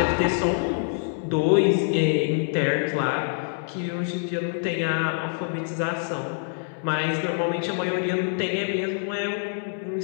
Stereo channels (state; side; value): silent; right; digital silence